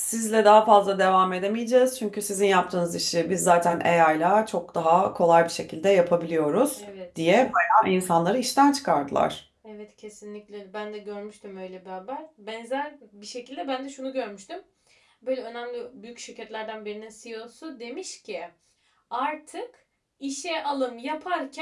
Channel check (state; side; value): identical; both; correlation 1.00